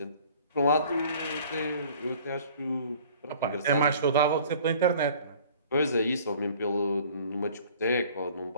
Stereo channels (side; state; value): both; inverted; correlation -0.50